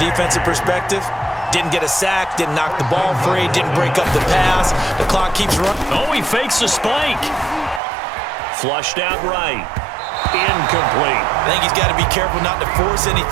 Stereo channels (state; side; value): drops out; left; at 7.8 s